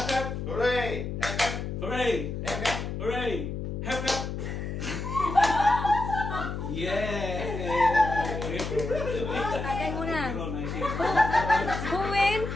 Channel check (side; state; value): left; noise; hum, 5 dB below the sound